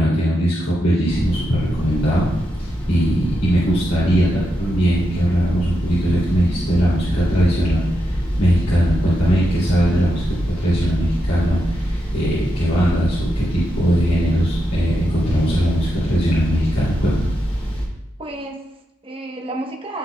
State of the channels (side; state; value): both; normal; correlation 0.85